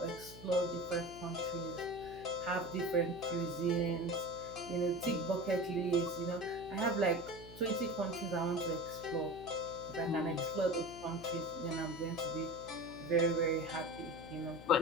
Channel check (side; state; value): left; noise; hum, 15 dB below the sound